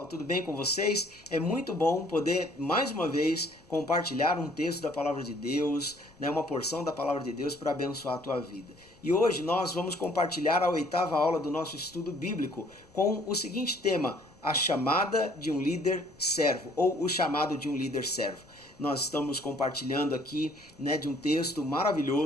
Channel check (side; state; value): left; noise; rumble, 28 dB below the sound